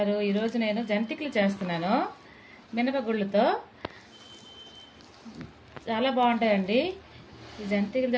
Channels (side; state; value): both; identical; correlation 1.00